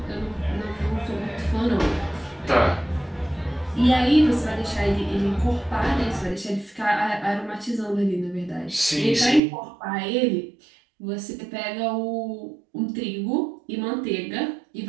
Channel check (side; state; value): left; drops out; at 9.4 s